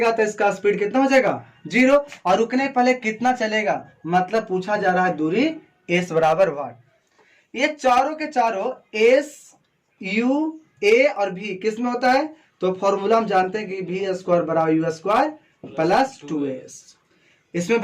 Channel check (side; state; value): both; identical; correlation 1.00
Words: तो इसका स्पीड कितना हो जाएगा 0, और रुकने पहले कितना चलेगा, मतलब पूछा जा रहा है दूरी s बराबर वाट। ये चारों के चारों s u a और v किस में होता है, तो फॉर्मूला हम जानते हैं कि v स्क्वायर बराबर u स्क्वायर प्लस 2s। इसमें